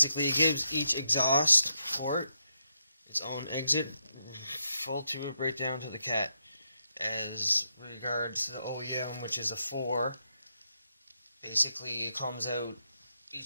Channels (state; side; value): inverted; both; correlation -0.82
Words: it gives each exhaust port its own exit, full tube right down to the cat. As regards to the OEM, which is a 4, basically it comes out,